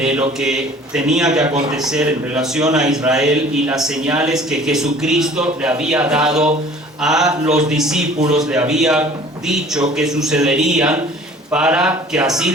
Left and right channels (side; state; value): both; normal; correlation 0.49